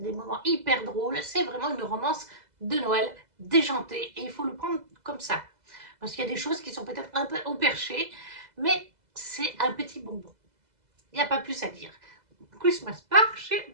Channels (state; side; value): late; left; 2.0 ms